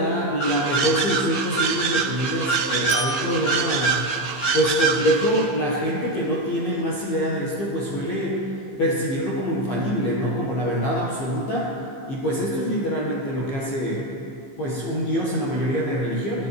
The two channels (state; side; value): late; right; 15 ms